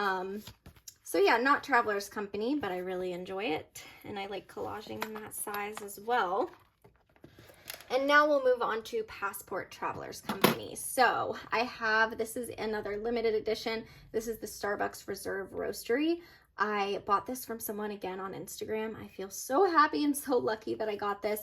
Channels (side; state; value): both; identical; correlation 1.00